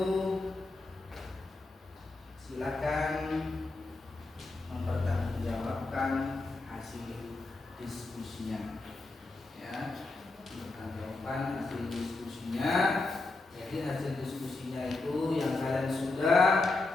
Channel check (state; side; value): quieter; right; 3.3 dB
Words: silakan mempertanggungjawabkan hasil diskusinya. Ya, mempertanggungjawabkan hasil diskusinya. Jadi hasil diskusinya itu yang kalian sudah